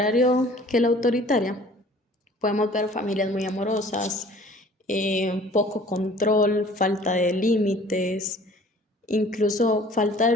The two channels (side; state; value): both; normal; correlation 0.51